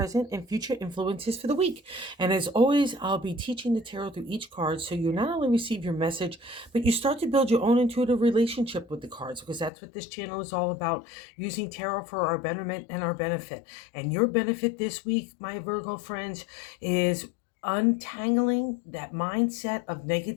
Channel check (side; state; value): right; drops out; at 9.7 s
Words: and future influences for the week. And as always, I'll be teaching the tarot through each card so you not only receive your message, but you start to build your own intuitive relationship with the cards, because that's what this channel is all about, using tarot for our betterment and our benefit. And your benefit this week, my Virgo friends, is untangling that mindset of